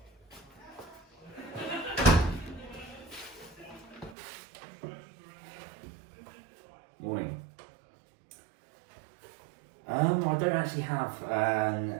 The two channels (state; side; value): drops out; left; at 4.2 s